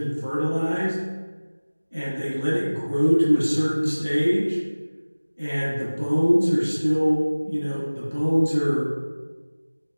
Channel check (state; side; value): inverted; both; correlation -1.00